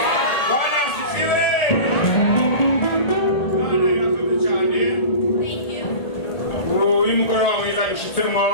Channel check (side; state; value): right; late; 1.7 ms